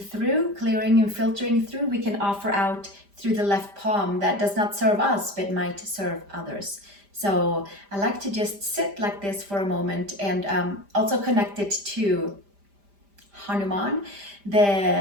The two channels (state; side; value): late; left; 5.0 ms